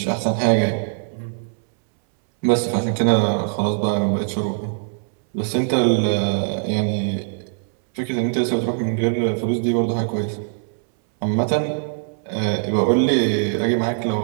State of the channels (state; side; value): silent; left; 65 dB below the other